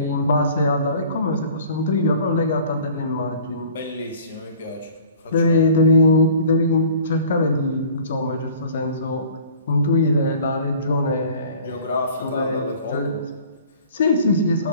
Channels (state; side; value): inverted; both; correlation -0.49